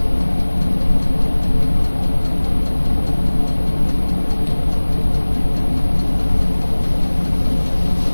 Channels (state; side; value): inverted; both; correlation -1.00